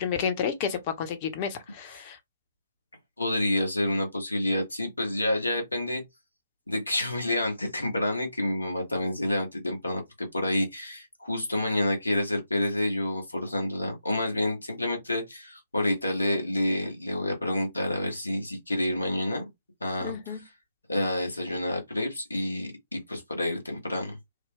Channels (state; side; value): inverted; both; correlation -0.84